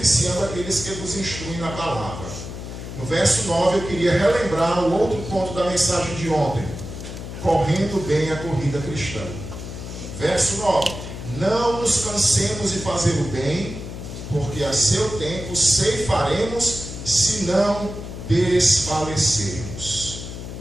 aqueles que vos instruem na palavra. No verso 9 eu queria relembrar o outro ponto da mensagem de ontem: correndo bem a corrida cristã. Verso 9: não nos cansemos de fazer o bem, porque a seu tempo ceifaremos, se não desfalecermos.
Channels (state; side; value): noise; left; hum, 9 dB below the sound